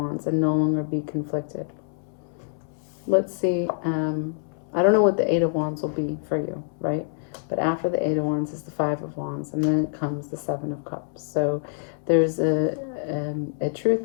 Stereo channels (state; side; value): silent; right; 61 dB below the other